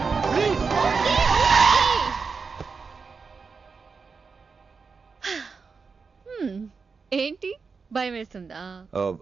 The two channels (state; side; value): quieter; left; 5.0 dB